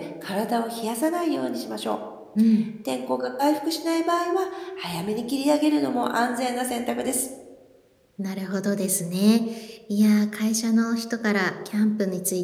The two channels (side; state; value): both; identical; correlation 1.00